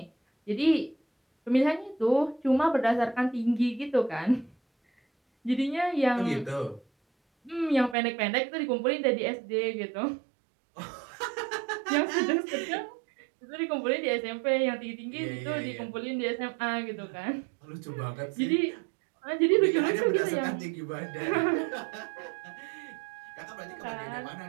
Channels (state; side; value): drops out; left; at 8.0 s